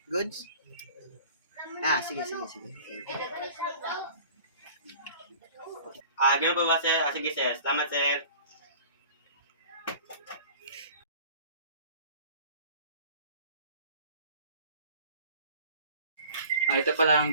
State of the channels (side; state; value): both; inverted; correlation -0.46